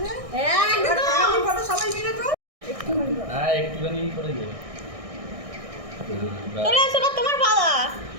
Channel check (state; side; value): late; left; 1.6 ms